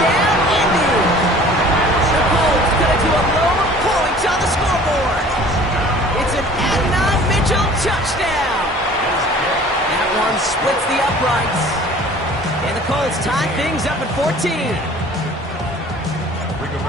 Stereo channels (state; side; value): normal; both; correlation 0.48